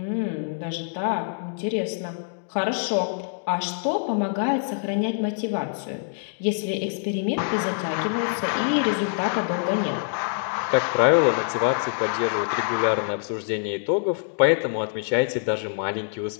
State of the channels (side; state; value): right; silent; digital silence